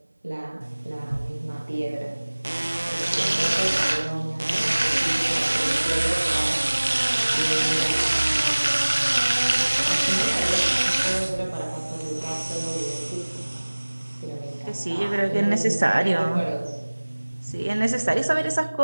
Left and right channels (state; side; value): inverted; both; correlation -1.00